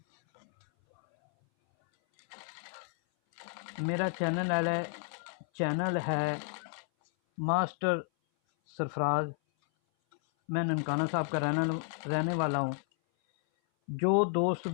मेरा चैनल है मास्टर सरफराज। मैं ननकाना साहब का रहने वाला हूँ। जो दोस्त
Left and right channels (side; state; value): right; silent; 57 dB below the other